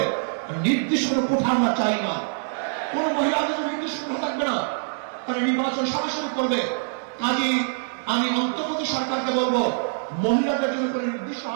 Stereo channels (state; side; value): silent; left; 62 dB below the other